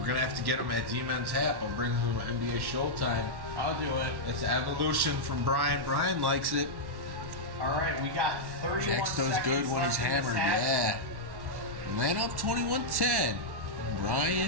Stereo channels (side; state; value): left; late; 1.1 ms